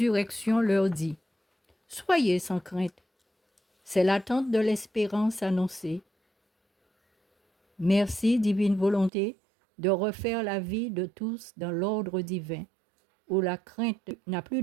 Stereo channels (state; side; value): drops out; left; at 9.1 s